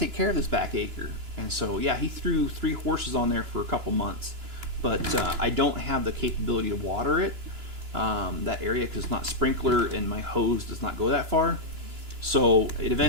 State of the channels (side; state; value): left; late; 2.9 ms